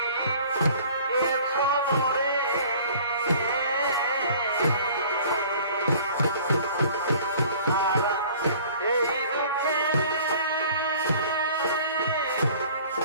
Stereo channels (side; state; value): both; inverted; correlation -0.50